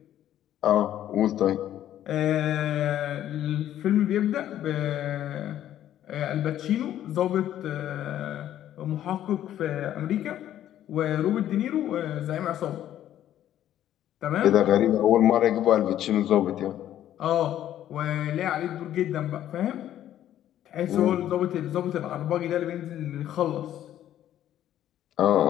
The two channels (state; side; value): quieter; right; 11.8 dB